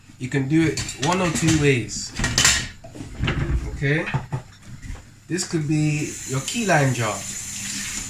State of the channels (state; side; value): identical; both; correlation 1.00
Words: You can do it one or two ways. Okay, this could be your key lime jar.